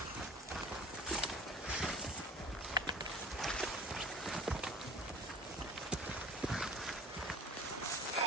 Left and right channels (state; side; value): normal; both; correlation 0.43